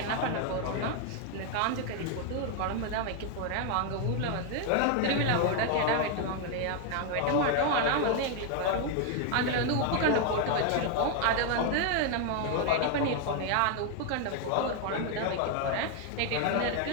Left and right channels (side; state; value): both; different; correlation 0.00